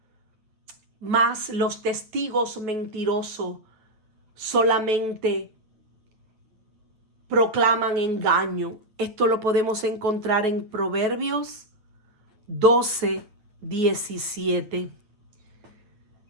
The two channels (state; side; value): late; left; 9.1 ms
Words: mas los testigos mentirosos solamente proclaman engaño. Esto lo podemos encontrar en Proverbios 12:17.